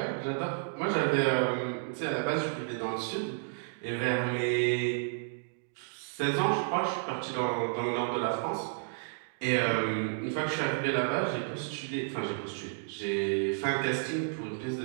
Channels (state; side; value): silent; left; digital silence